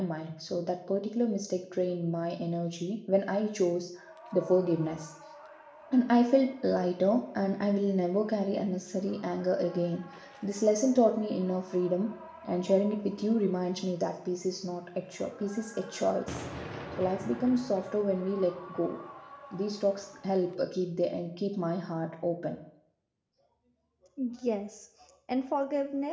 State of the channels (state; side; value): identical; both; correlation 1.00